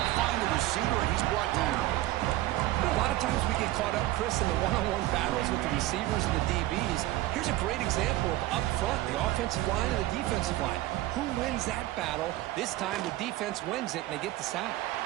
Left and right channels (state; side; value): quieter; left; 16.5 dB